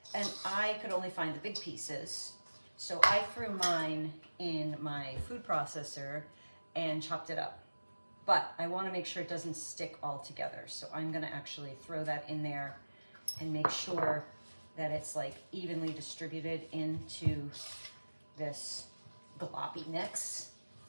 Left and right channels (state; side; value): inverted; both; correlation -1.00